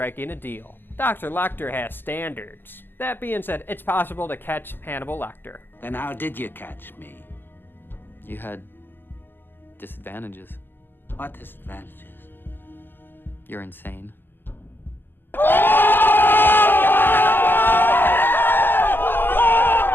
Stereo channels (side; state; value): right; late; 0.099 ms